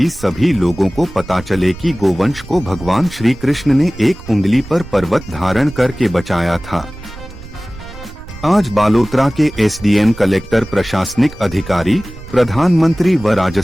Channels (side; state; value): right; noise; rumble, 16 dB below the sound